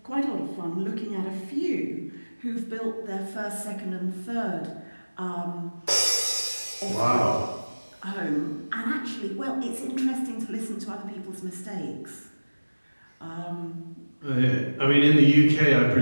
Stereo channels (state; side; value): inverted; both; correlation -1.00